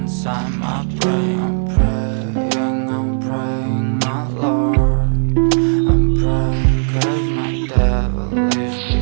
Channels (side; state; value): left; silent; digital silence